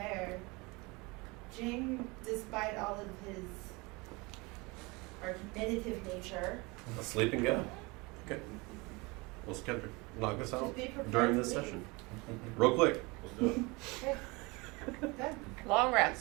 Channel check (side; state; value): left; quieter; 25.8 dB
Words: Jing, despite all of his argumentative nature, Sleep and go. Okay. We'll knock this out just be prepared during to this leave. session. Real quick. Good. Long rest.